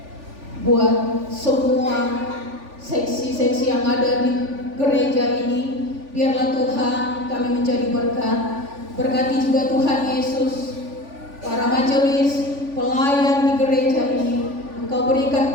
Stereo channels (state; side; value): late; left; 3.5 ms